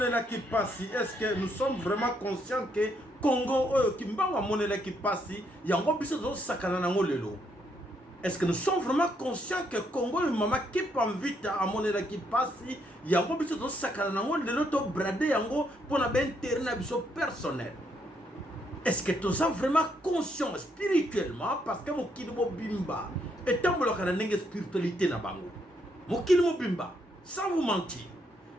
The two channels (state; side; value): normal; both; correlation 0.74